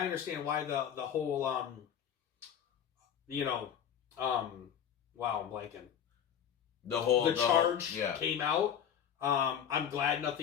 understand why the whole, wow, I'm blanking. The charge came out. I'm glad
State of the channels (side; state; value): right; quieter; 8.8 dB